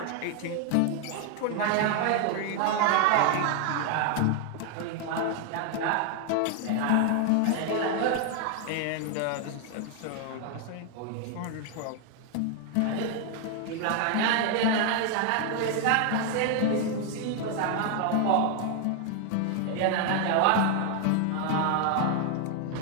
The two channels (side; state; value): both; different; correlation 0.00